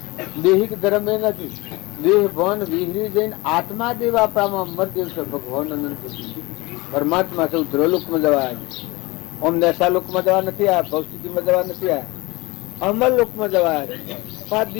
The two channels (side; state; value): right; quieter; 23.2 dB